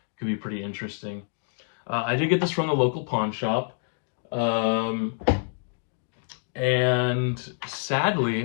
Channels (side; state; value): right; silent; digital silence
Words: could be pretty interesting. I did get this from the local pawn shop. And